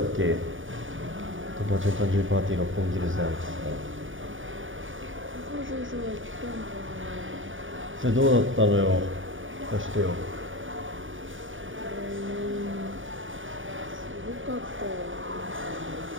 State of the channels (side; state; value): left; late; 0.57 ms